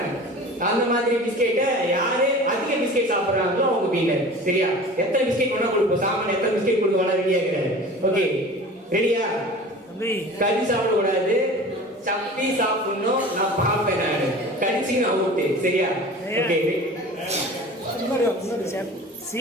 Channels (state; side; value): normal; both; correlation 0.39